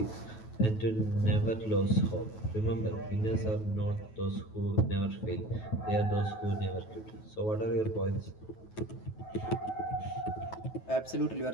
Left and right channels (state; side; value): late; right; 9.2 ms